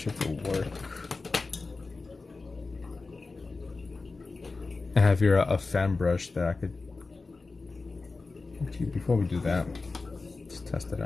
it'll work. I have here a fan brush that I could. Actually, before we do that, let's test it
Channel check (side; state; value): right; quieter; 3.8 dB